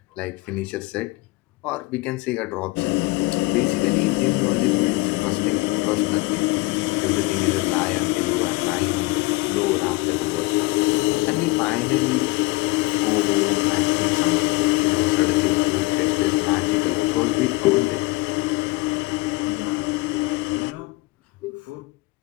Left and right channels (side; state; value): right; quieter; 21.7 dB